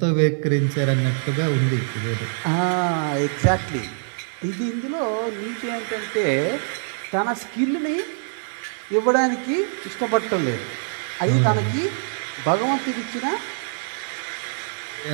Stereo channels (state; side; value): silent; left; digital silence